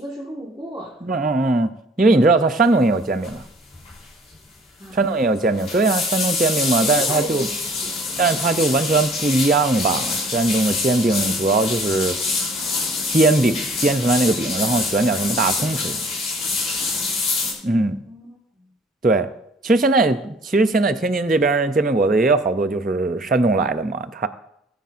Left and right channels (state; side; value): normal; both; correlation 0.54